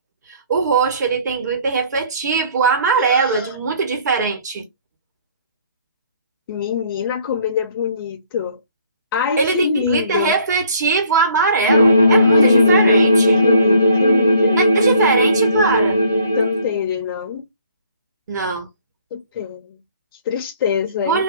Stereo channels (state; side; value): inverted; both; correlation -0.60